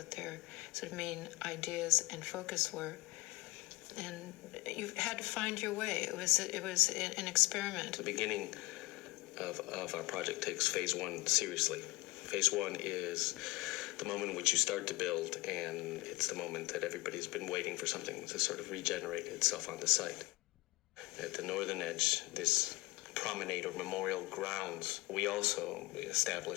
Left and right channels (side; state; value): right; quieter; 22.4 dB